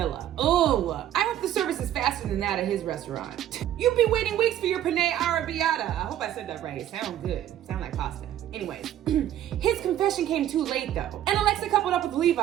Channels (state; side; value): quieter; left; 11.7 dB